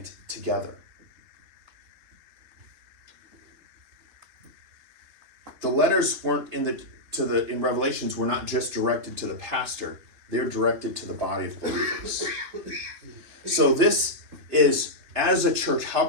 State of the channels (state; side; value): late; left; 3.3 ms